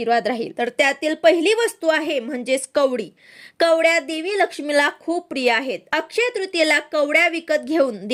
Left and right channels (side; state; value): both; identical; correlation 1.00